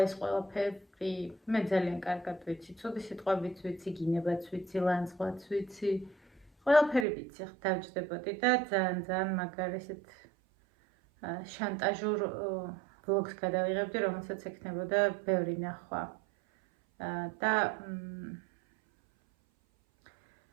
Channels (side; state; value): left; drops out; at 7.1 s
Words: ეს ყველაფერი მე ძალიან კარგად ვიცი, ცუდი სიტყვებიც ვიცი, გინებაც ვიცი, ლანძღვაც ვიცი. ყველაფერი ვიცი, ხ დავჯდებოდი და ძალიან მაგარი ესეთ შანტაჟურ ვლოგს გადავიღებდი, რომელსაც ექნებოდა ბევრი ნახვა. და